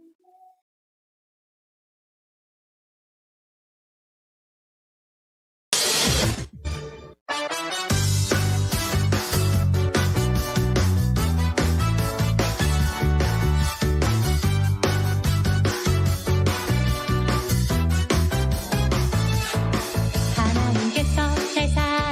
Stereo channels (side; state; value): both; identical; correlation 1.00